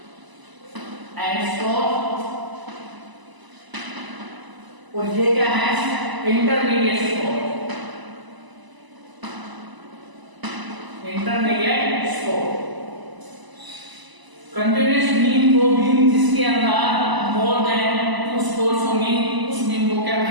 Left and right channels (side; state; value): left; late; 1.0 ms